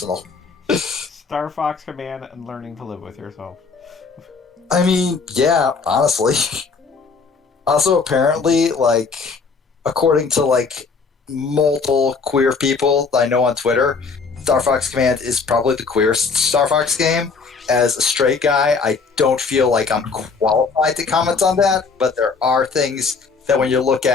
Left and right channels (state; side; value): quieter; right; 4.8 dB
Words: Star Fox Command and learning to live with yourself. I mean, yeah, honestly. Also, apparently, like, according to, like, multiple queer people that I know on Twitter, Star Fox Command is probably the queerest Star Fox game. As a straight guy, I don't feel like I'm qualified to comment on that, but there are things that when you look